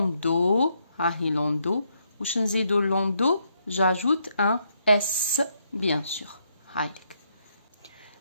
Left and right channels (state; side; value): inverted; both; correlation -0.76